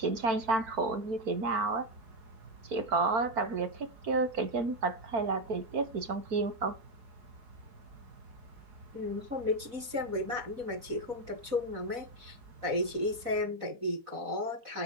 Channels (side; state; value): left; late; 4.0 ms